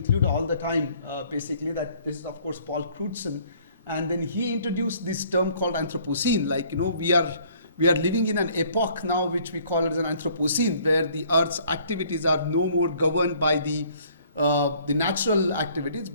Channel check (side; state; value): both; inverted; correlation -0.59